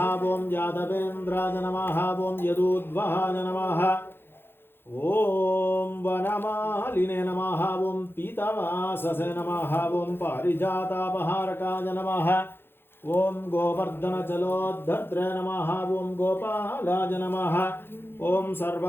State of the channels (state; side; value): late; right; 0.10 ms